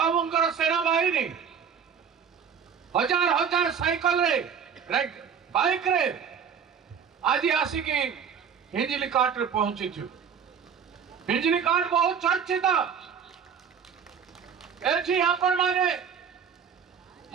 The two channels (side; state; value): left; quieter; 7.2 dB